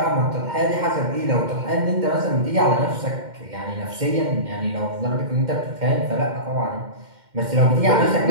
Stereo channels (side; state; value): left; late; 2.1 ms